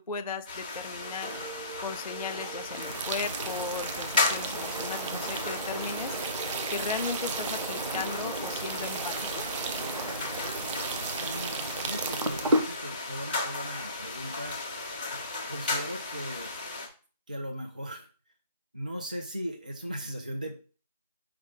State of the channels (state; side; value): inverted; both; correlation -0.43